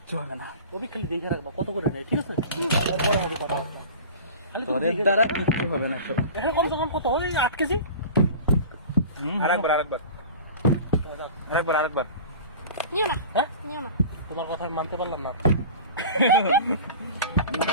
হবে না। ওই খালি দেখে রাখবা কত করে নেয়, ঠিক আছে? তারপরে হবে কথা। ওদের দ্বারা কিচ্ছু হবে না সব। এখন কম সে কম কত ওই 8 কেজি। আরেকবার নিও না, হ্যাঁ নিও না। তোমার কথা আমি মানতে পারলাম না।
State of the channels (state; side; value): inverted; both; correlation -0.37